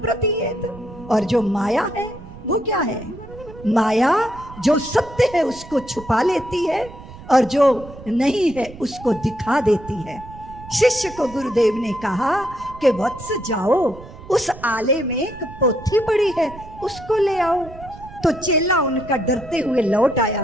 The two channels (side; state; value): right; noise; rumble, 16 dB below the sound